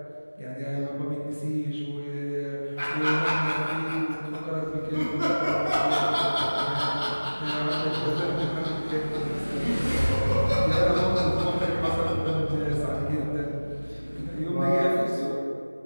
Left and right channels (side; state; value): both; inverted; correlation -1.00